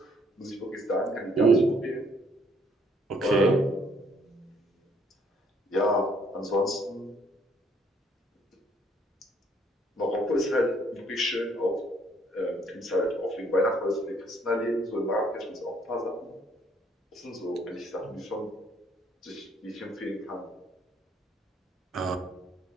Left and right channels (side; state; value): both; normal; correlation 0.65